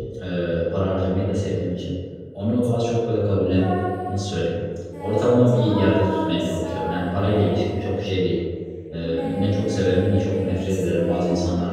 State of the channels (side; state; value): both; identical; correlation 1.00